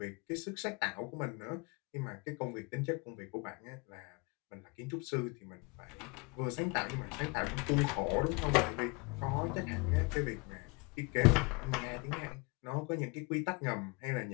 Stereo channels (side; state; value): right; quieter; 29.5 dB